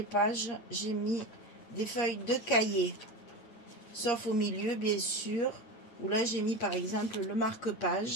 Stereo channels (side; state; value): right; late; 8.6 ms